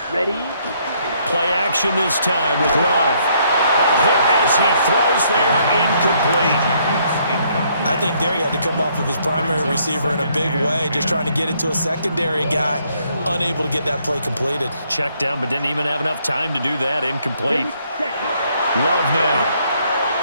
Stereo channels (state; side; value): inverted; both; correlation -0.69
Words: Ready? Play action this time with Love. A hit as he throws there, incomplete. I think there he had to come off of his primary receiver in a big way, just trying to get it to a secondary guy, unable to get that play completed. Checked down, but didn't even have enough time to do that. Incomplete. Love now.